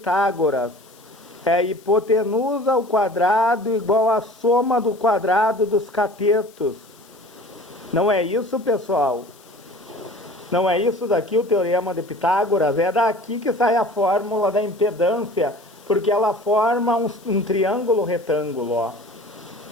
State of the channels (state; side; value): noise; left; hiss, 27 dB below the sound